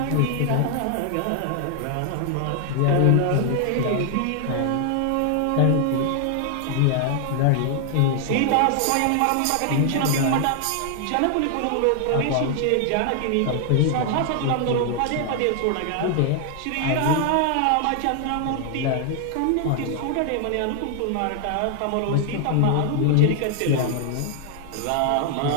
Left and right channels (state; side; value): different; both; correlation 0.00